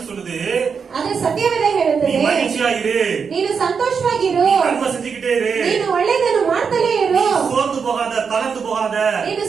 சொல்லுது, ಆದ್ರೆ ಸತ್ಯವೇದ ಹೇಳುತ್ತದೆ, நீ மகிழ்ச்சியா இரு, ನೀನು ಸಂತೋಷವಾಗಿರು, நன்மை செஞ்சுக்கிட்டே இரு, ನೀನು ಒಳ್ಳೆಯದನ್ನು ಮಾಡ್ತಲೇ ಇರು, சோர்ந்து போகாத, தளர்ந்து போகாத, ನೀನು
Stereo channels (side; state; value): left; quieter; 6.0 dB